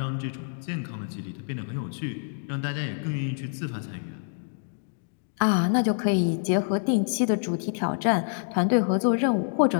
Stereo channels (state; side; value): silent; right; digital silence